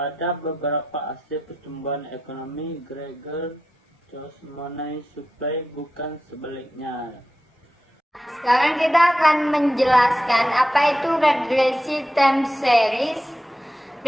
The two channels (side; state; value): both; normal; correlation 0.89